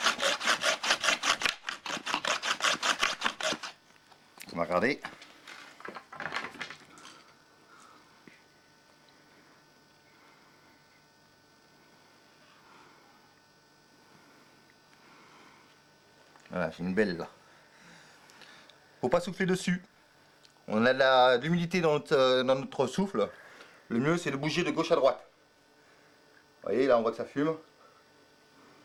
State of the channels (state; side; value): identical; both; correlation 1.00